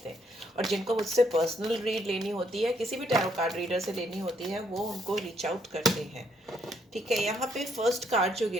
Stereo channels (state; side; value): normal; both; correlation 0.72